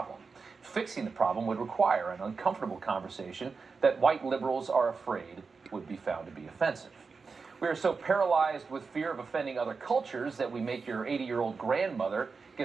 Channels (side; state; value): left; quieter; 4.8 dB